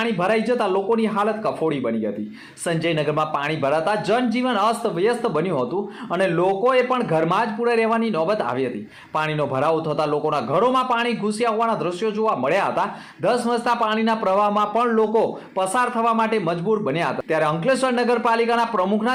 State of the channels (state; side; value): identical; both; correlation 1.00